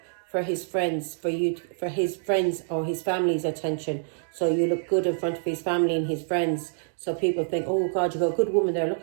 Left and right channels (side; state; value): left; silent; digital silence